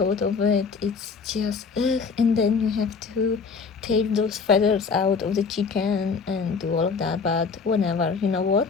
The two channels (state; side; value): quieter; right; 5.1 dB